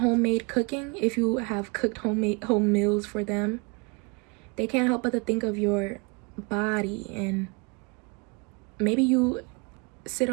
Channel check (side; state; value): left; quieter; 30.6 dB